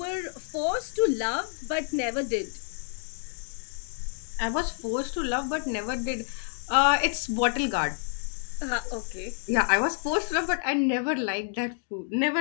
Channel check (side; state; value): right; silent; digital silence